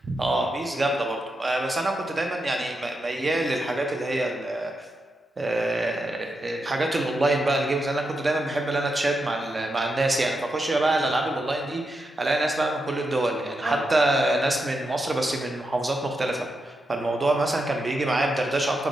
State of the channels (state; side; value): normal; both; correlation 0.85